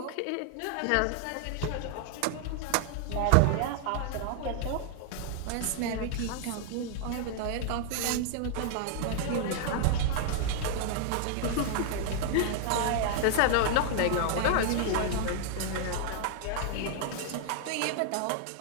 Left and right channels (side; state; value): both; different; correlation 0.00